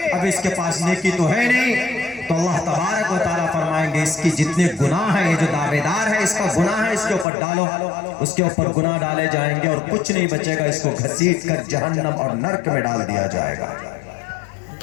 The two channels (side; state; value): right; drops out; at 7.2 s